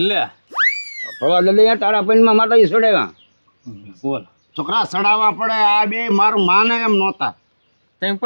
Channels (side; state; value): both; inverted; correlation -1.00